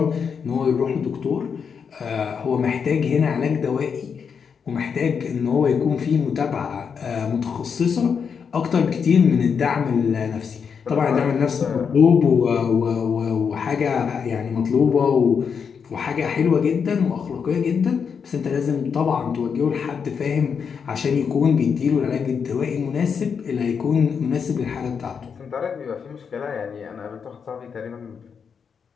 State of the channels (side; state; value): right; quieter; 6.5 dB